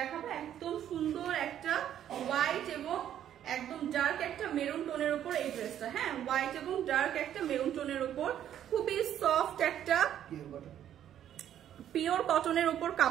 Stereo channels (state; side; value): quieter; left; 10.6 dB